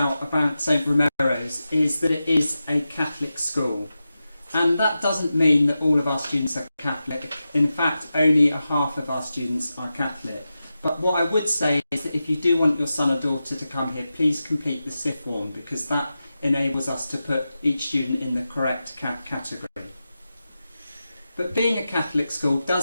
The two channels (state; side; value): inverted; both; correlation -0.92